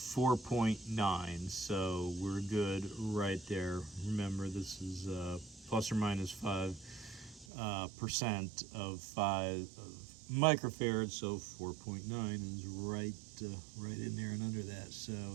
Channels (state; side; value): drops out; left; at 7.5 s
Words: so we're good right there. Remember, this is plus or minus 5% of 5 microfarads, so 4.9 is right in there and under that.